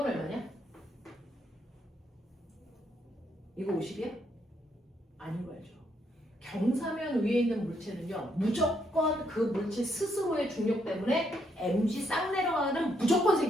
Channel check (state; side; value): normal; both; correlation 0.75